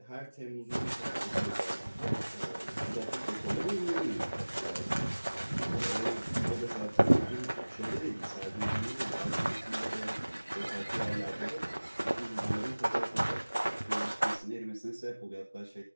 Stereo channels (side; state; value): both; inverted; correlation -1.00